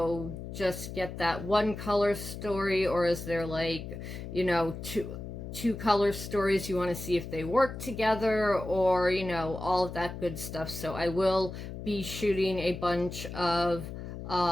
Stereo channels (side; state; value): left; noise; hum, 9 dB below the sound